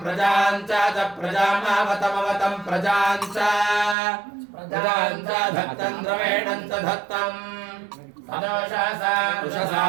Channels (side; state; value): left; drops out; at 4.0 s